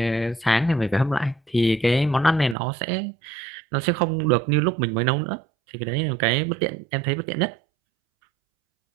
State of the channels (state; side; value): drops out; left; at 2.6 s